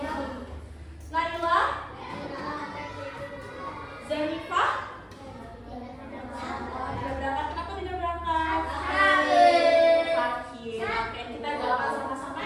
Naila, Zenifah. Tidak berangkat, kenapa tidak berangkat? Sakit. Oke, kita doakan sama-sama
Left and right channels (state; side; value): identical; both; correlation 1.00